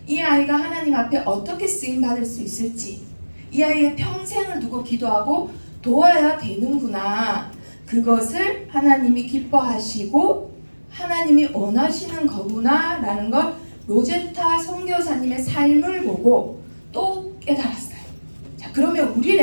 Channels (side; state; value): both; inverted; correlation -1.00